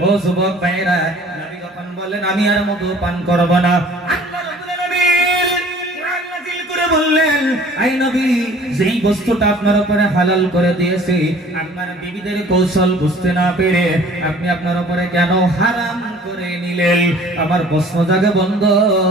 ও যুবক ভাইরা, নবী যখন বললেন আমি আর মধু পান করব না, আল্লাহ রাব্বুল আলামিন কোরআন নাযিল করে বললেন আই নবী যেই বস্তুটা আপনার উপরে হালাল করে দিয়েছি আপনার বিবিদের কৌশল বুঝতে না পেরে আপনি আপনার উপরে কেন হারাম করে নিলেন? আমার প্রশ্ন জাগে বন্ধ।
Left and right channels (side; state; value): both; normal; correlation 0.51